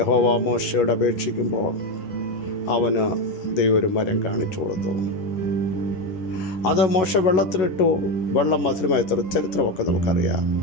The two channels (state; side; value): late; right; 11 ms